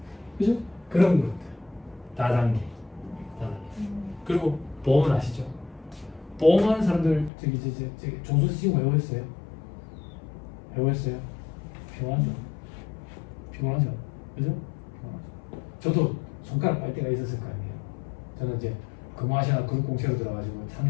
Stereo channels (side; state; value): right; drops out; at 7.3 s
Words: 그죠? 그런 것들. 다단계. 그리고 보험은 아시죠? 보험하는 사람들 저기 종수 지금 외워했어요? 외워했어요? 피곤하죠? 피곤하죠? 그죠? 저도 손가락 빨 때가 있었을 거 아니에요. 저는 이제 금호아시아나 그룹공채로 들어가지고